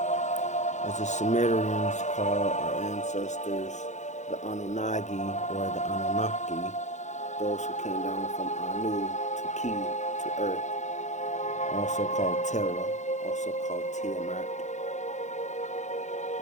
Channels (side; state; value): right; late; 0.34 ms